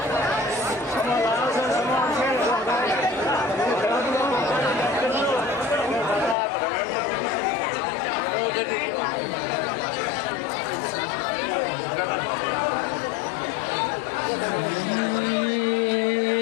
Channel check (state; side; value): drops out; right; at 6.4 s